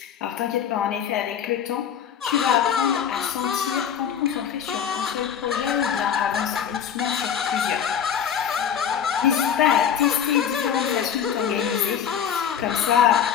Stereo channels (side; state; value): right; quieter; 8.5 dB